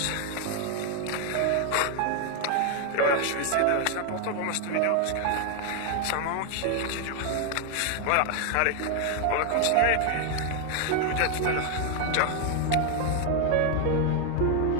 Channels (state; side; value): different; both; correlation 0.01